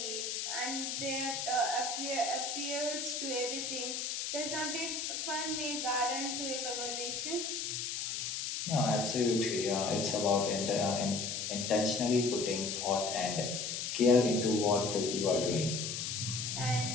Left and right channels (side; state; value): left; noise; hiss, 3 dB below the sound